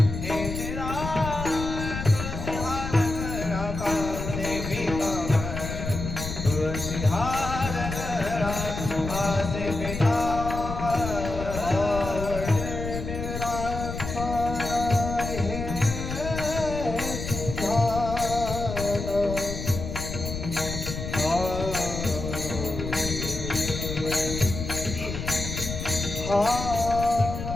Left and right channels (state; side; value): noise; left; rumble, 6 dB below the sound